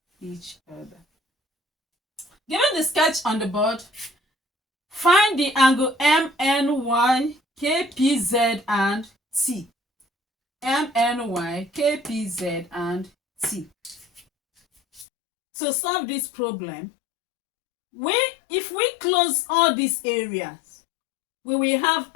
each other. Given the sketch on the board, find the angle MNY, KPZ, and T. MNY, KPZ, and T. To solve this problem, if we close all these areas, we will have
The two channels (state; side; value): drops out; right; at 15.1 s